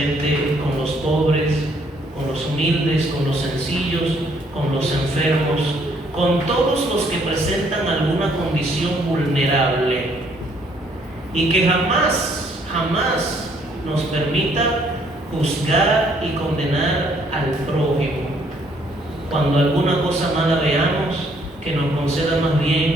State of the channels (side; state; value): both; normal; correlation 0.66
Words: con los pobres, con los humildes, con los sencillos, con los enfermos, con todos los que presentan alguna condición vulnerable, y que jamás nos permita juzgar y condenar al prójimo. Cuando alguna cosa mala veamos, que nos conceda más